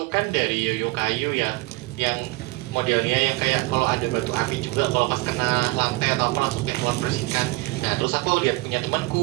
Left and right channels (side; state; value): left; quieter; 22.9 dB